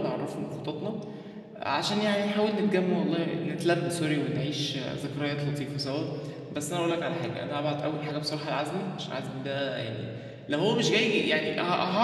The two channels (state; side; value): identical; both; correlation 1.00